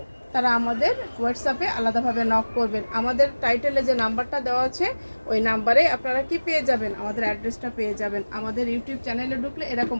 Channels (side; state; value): both; inverted; correlation -1.00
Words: তারা আমাদের হোয়াটসঅ্যাপে আলাদাভাবে নক করবেন। আমাদের টাইটেলে যে নাম্বারটা দেওয়া আছে ওই নাম্বারে আপনারা কি পেয়ে যাবেন, আমাদের অ্যাড্রেসটা পেয়ে যাবেন। আমাদের ইউটিউব চ্যানেলে ঢুকলে এরকম